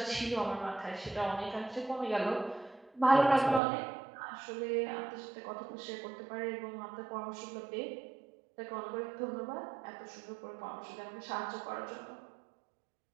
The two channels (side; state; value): left; drops out; at 3.6 s